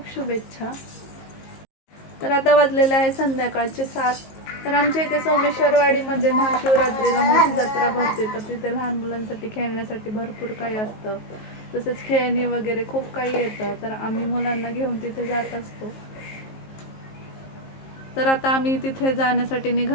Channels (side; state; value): right; late; 19 ms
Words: शुभेच्छा. तर आता वाजलेले आहे संध्याकाळचे 7. तर आमच्या इथे सोमेश्वरवाडीमध्ये महाशिवरात्रीला मोठी जत्रा भरते. तर तिथे लहान मुलांसाठी खेळण्यासाठी भरपूर काही असतं. तसेच खेळणी वगैरे खूप काही येतं. तर आम्ही मुलांना घेऊन तिथे जात असतो. तर आता आम्ही तिथे जाण्यासाठी